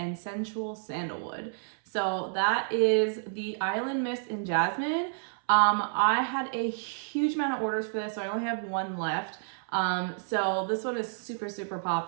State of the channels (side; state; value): left; silent; 58 dB below the other